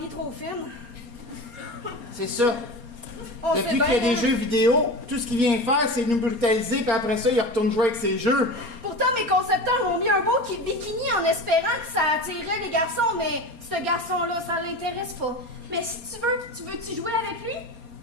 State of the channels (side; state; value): left; late; 4.3 ms